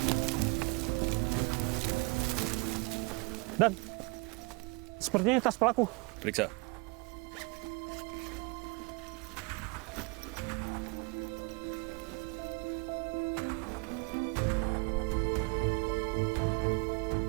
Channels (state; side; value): quieter; left; 28.2 dB